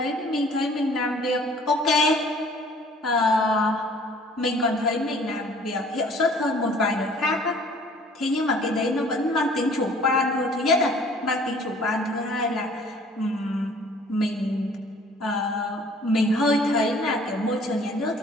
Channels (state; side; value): normal; both; correlation 0.53